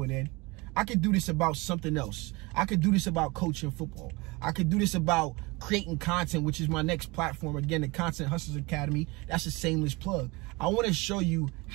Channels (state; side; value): quieter; left; 24.9 dB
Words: an end. I could do this about something else. I could do this about coaching football. I could do this about creating content, which is my next platform. Again, the Content Hustlers Academy. That's a shameless plug. I want to show you